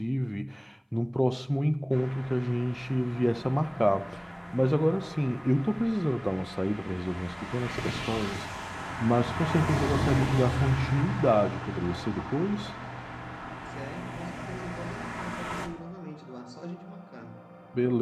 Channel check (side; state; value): both; identical; correlation 1.00